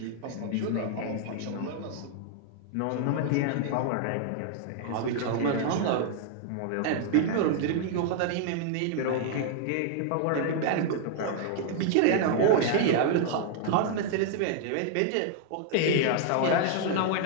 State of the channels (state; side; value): different; both; correlation 0.00